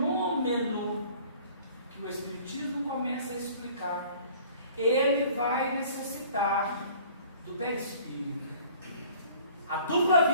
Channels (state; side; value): inverted; both; correlation -0.51